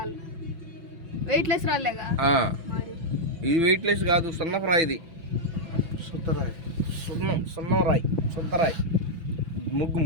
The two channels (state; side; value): late; left; 6.0 ms